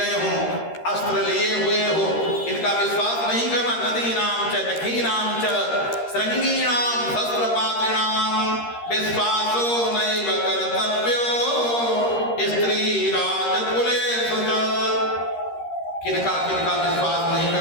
हो, अस्त्र लिए हुए हो, इनका विश्वास नहीं करना। नदीनाम च नखीनाम च श्रृंगीणाम शस्त्रपात्रिणाम विश्वासो नैव कर्तव्यो स्त्री राजकुलेषु च। किनका विश्वास नहीं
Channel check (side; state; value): right; late; 13 ms